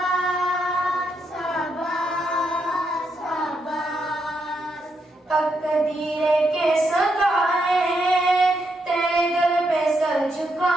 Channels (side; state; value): both; normal; correlation 0.80